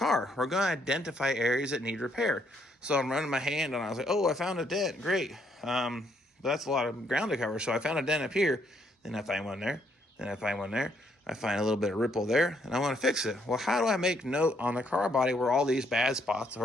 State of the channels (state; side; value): normal; both; correlation 0.71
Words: We're going to identify areas that need repair. So I'm running my hand and I was like, oh, I found a dent. Great. But that's a lot of ground to cover. So I found a dent up here. Then I find one there. Then I find one there. I find a little bit of ripple there. And I want to fix it. Well, how do I make note on the car body where all these bad spots